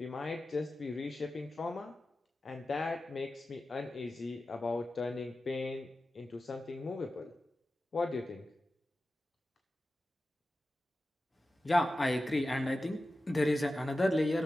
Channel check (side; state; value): both; normal; correlation 0.94